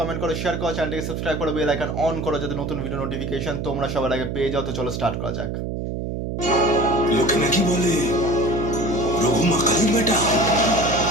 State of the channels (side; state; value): right; noise; hum, 4 dB below the sound